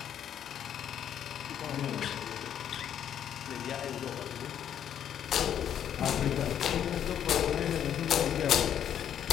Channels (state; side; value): quieter; right; 9.6 dB